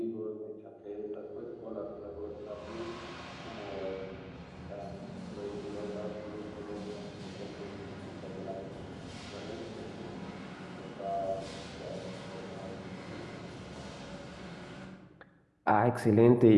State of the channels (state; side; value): identical; both; correlation 1.00